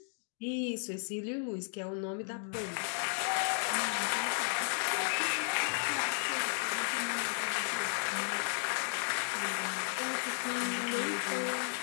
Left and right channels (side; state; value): right; silent; digital silence